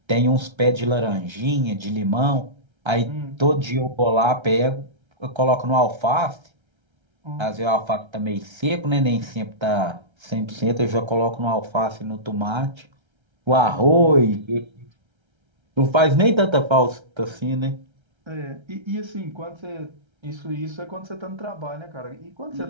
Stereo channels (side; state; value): left; late; 1.3 ms